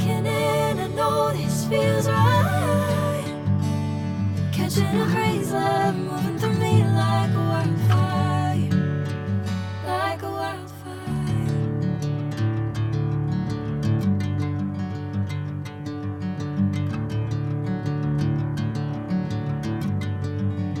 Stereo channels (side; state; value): both; identical; correlation 1.00